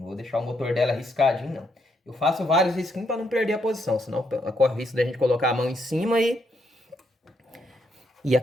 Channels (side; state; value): both; normal; correlation 0.76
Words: vou deixar o motor dela riscadinho, não. Eu faço vários risquinhos para não perder a posição, senão corre o risco da gente colocar a mão em cima e